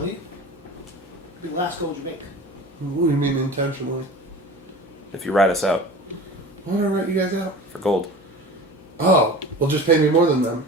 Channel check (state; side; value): normal; both; correlation 0.37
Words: it'll be the last gold you make. What do you mean intentionally? If you rat us out Why would I write you guys out? for gold. Oh, well, just pay me more than them.